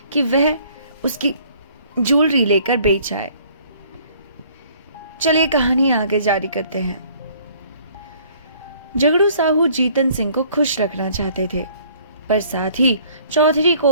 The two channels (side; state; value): both; inverted; correlation -0.58